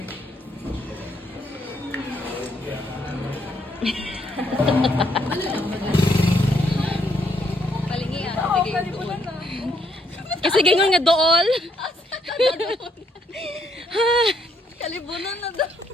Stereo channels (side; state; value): both; normal; correlation 0.72